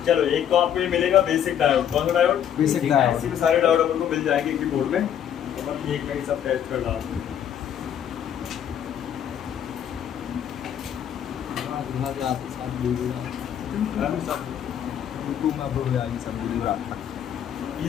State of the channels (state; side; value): quieter; right; 9.5 dB